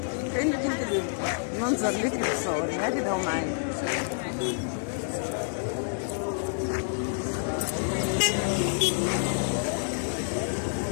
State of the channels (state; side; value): silent; right; digital silence